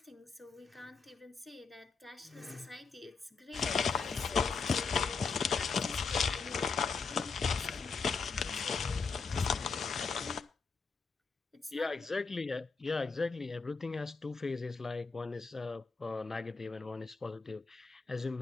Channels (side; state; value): right; quieter; 4.9 dB